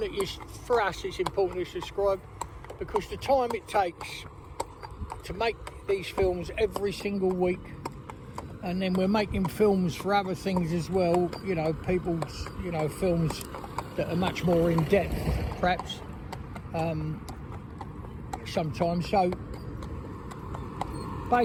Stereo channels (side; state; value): both; identical; correlation 1.00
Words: for us, it's important to subscribe, because the time it takes to make these films every single week, and then we're making films for other things as well, you know, people's, you know, films that are much more in depth, perhaps, sometimes. So